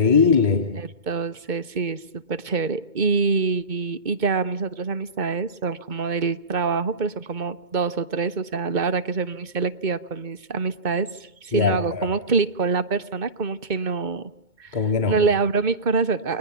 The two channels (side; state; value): left; late; 2.2 ms